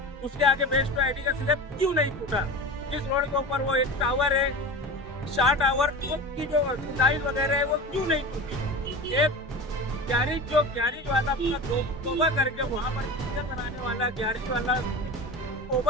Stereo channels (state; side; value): normal; both; correlation 0.30